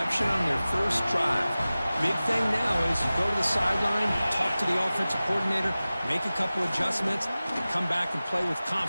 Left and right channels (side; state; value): both; inverted; correlation -0.97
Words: on their first drive. Big thing now is you go to the sideline, talk to the offensive coordinator, make a couple adjustments, and come back and play with